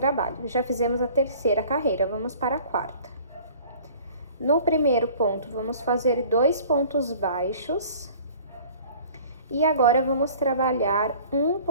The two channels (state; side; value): inverted; both; correlation -0.48